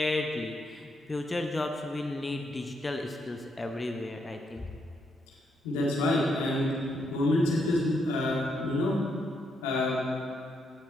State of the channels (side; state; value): both; normal; correlation 0.78